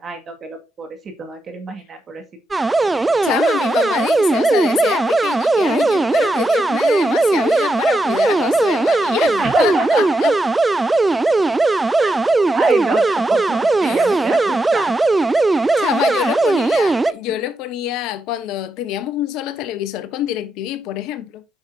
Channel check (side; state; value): both; normal; correlation 0.85